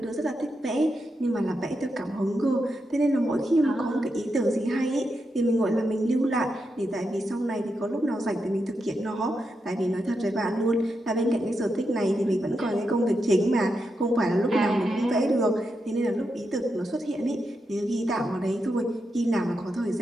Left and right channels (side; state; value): both; normal; correlation 0.85